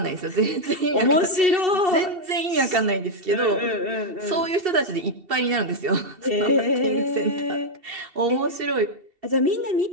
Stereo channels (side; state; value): left; late; 2.7 ms